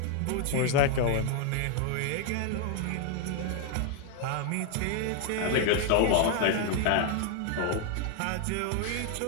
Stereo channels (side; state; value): both; different; correlation 0.00